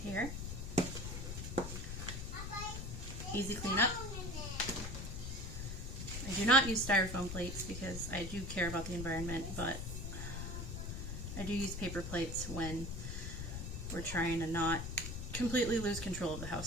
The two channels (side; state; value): left; noise; rumble, 6 dB below the sound